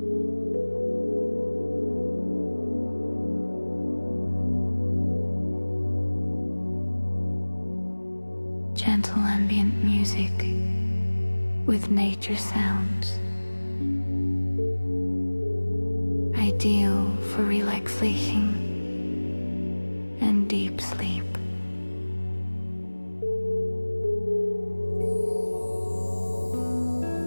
Gentle ambient music with nature sounds, ideal for relaxation and deep sleep.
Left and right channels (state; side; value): inverted; both; correlation -1.00